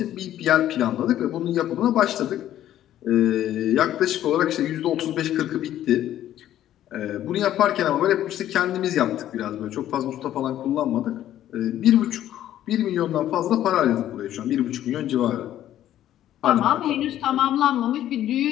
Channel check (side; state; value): right; quieter; 12.2 dB